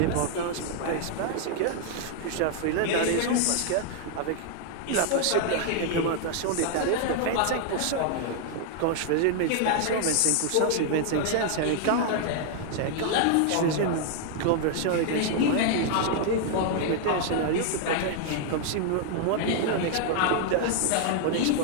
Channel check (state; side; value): different; both; correlation 0.00